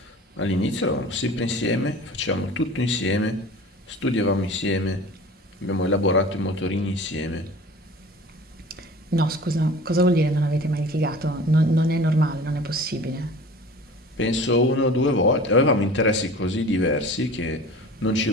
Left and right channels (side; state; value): both; normal; correlation 0.42